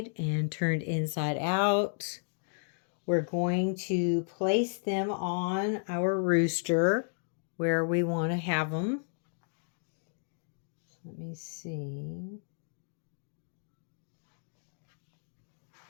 and turned inside out, we're going to place them on our rooster where we want to have them. Let me see.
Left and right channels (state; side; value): silent; right; digital silence